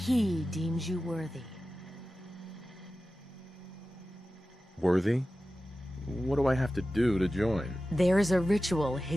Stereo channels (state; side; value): normal; both; correlation 0.94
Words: deems you worthy. Worthy? What do I have to do to join? There is a ritual